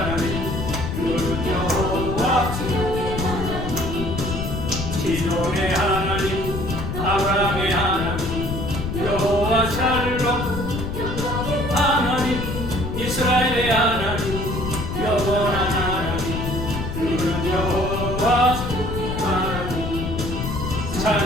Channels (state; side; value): noise; left; rumble, 4 dB below the sound